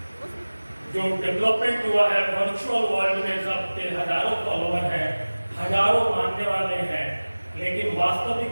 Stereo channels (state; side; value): inverted; both; correlation -1.00